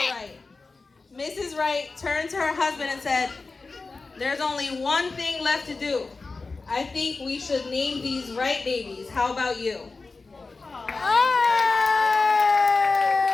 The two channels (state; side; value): quieter; right; 3.9 dB